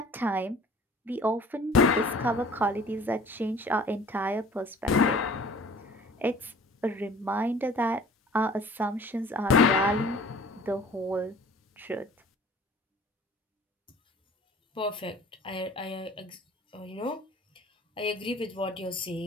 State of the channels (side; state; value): both; normal; correlation 0.48